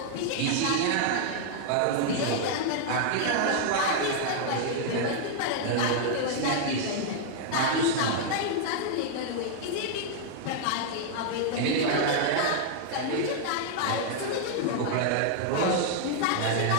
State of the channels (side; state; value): both; different; correlation -0.01